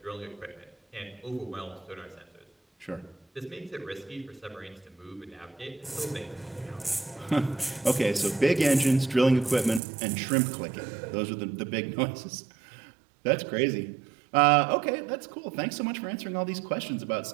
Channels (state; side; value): drops out; left; at 9.8 s